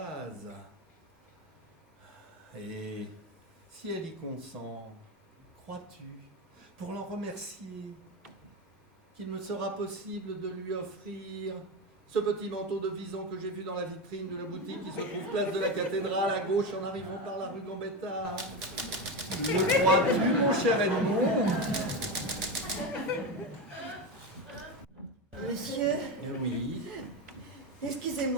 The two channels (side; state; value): both; normal; correlation 0.16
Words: Et si elle y consent, crois-tu, pour l'en remercier, qu'il me sera possible de lui offrir ce petit manteau de vison que j'ai vu dans la vitrine de la boutique qui se trouve place de la cathédrale à gauche en arrivant par la rue Gambetta? Le crois-tu, mon cher Edmond? Monsieur, Oui.